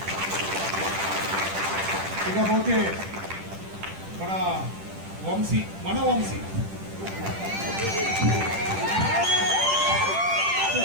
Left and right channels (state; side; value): late; left; 10 ms